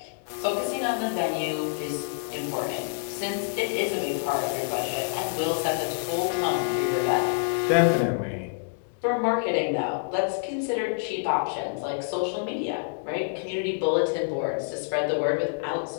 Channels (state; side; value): silent; right; digital silence